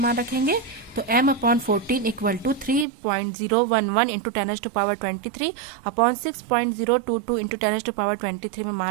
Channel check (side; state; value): left; drops out; at 2.9 s